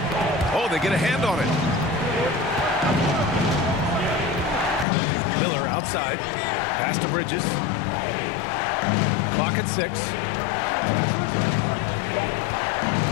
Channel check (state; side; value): drops out; right; at 4.9 s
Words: Oh, they get a hand on it. Miller outside. Pass to Bridges. Clock at 6.